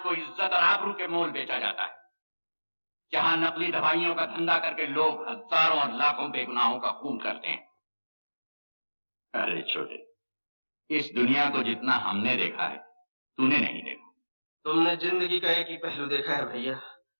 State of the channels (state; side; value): inverted; both; correlation -1.00